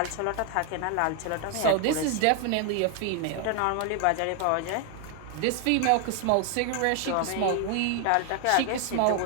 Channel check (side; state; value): both; different; correlation 0.01